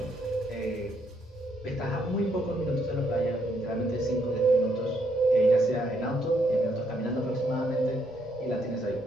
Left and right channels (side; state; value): both; normal; correlation 0.73